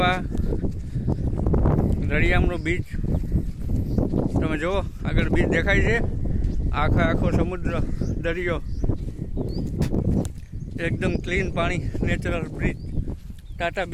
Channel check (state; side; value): identical; both; correlation 1.00